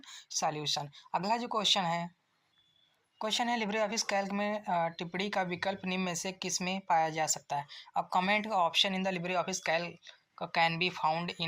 सॉल्यूशन। अगला जो क्वेश्चन है लिब्रे ऑफिस कैल्क में टिप्पणी का विकल्प निम्न में से किस में पाया जा सकता है। अब कमेंट का option in the Libre Office Calc can be found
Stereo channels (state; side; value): identical; both; correlation 1.00